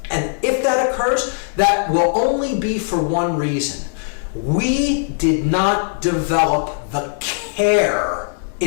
And if that occurs, that will only be for one reason. We did not develop the care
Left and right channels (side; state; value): right; silent; digital silence